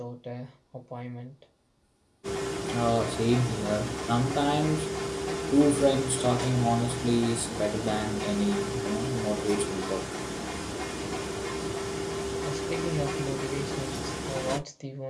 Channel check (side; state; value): both; identical; correlation 1.00